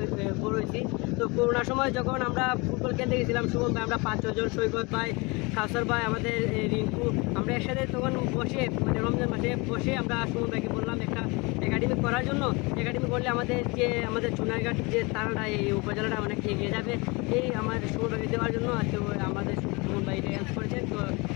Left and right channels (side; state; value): right; quieter; 26.9 dB